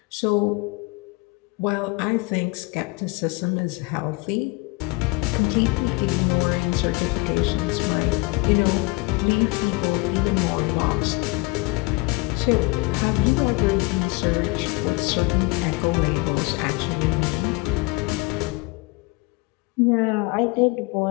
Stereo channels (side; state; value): right; quieter; 25.1 dB